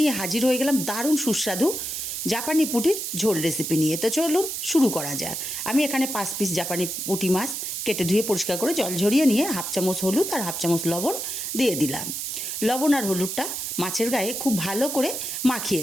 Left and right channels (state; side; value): noise; right; hiss, 4 dB below the sound